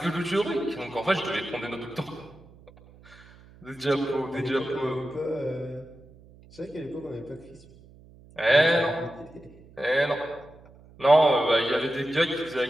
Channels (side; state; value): right; noise; hum, 24 dB below the sound